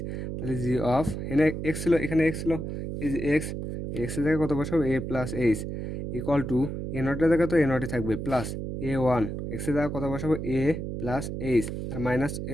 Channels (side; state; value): right; noise; hum, 5 dB below the sound